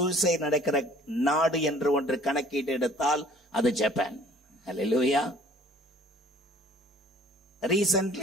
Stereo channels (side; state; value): both; normal; correlation 0.53